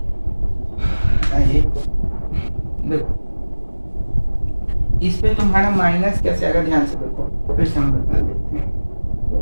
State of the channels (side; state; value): both; inverted; correlation -1.00